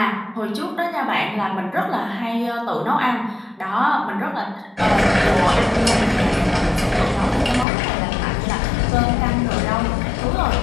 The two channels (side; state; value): right; drops out; at 7.7 s